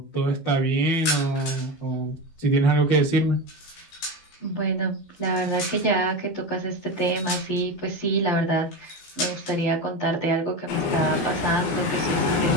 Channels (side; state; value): right; late; 15 ms